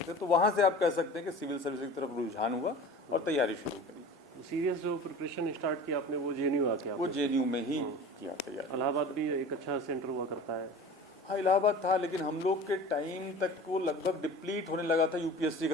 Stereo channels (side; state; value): both; normal; correlation 0.38